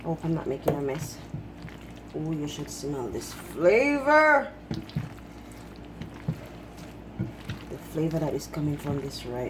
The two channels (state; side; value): identical; both; correlation 1.00